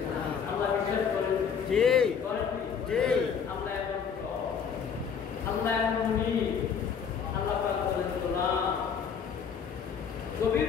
আল্লাহ বিশ্বাস করেন? জি করেন? জি। আল্লাহ এমন আল্লাহ এমনই আল্লাহ পাক বলেন গোলাম গভীর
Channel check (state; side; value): quieter; right; 6.9 dB